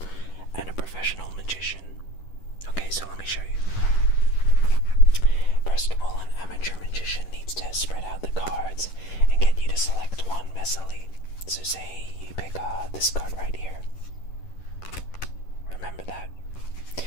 and a professional magician. Okay, so let me show you. First of all, an amateur magician needs to spread out the cards and get you to select one messily. So say you pick this card right here. Remember that.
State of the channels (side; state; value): right; late; 11 ms